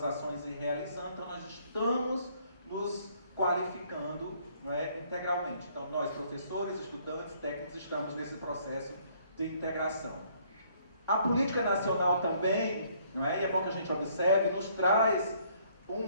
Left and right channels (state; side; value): inverted; both; correlation -0.64